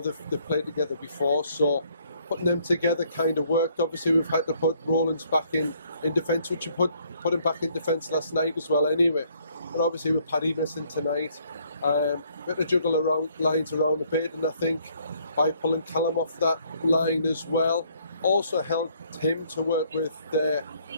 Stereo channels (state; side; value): inverted; both; correlation -0.65